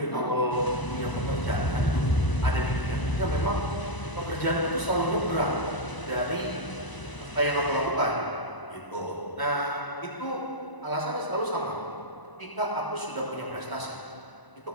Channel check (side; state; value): right; late; 1.0 ms